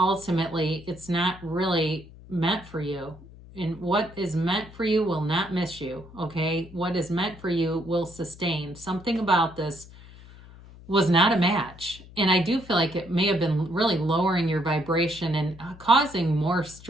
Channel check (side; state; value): left; noise; hum, 19 dB below the sound